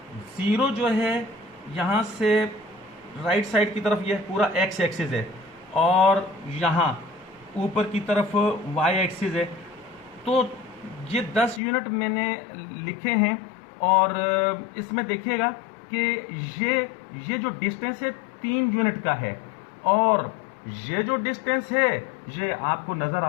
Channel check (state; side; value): drops out; right; at 11.6 s